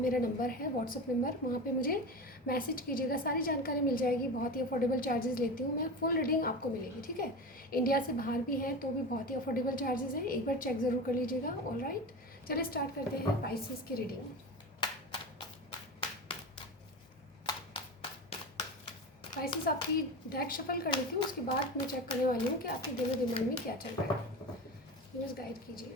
नंबर है, व्हाट्सअप नंबर, वहाँ पे मुझे मैसेज कीजिएगा, सारी जानकारी मिल जाएगी। बहुत ही अफोर्डेबल चार्जेस लेती हूँ मैं, फुल रीडिंग आपको मिलेगी, ठीक है। इंडिया से बाहर भी है तो भी बहुत ही अफोर्डेबल चार्जेस हैं, एक बार चेक ज़रूर कर लीजिएगा। ऑल राइट, चलिए स्टार्ट करते हैं पाइसेस की रीडिंग। पाइसेस आपकी डेक शफल कर लेती हूँ, उसके बाद मैं चेक करने वाली हूँ कि आपके दिलो दिमाग में क्या चल रहा है। न्यूज़ गाइड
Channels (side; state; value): both; normal; correlation 0.26